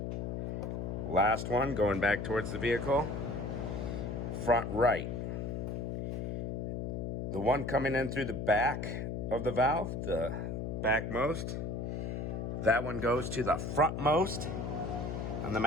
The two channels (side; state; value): left; noise; hum, 3 dB below the sound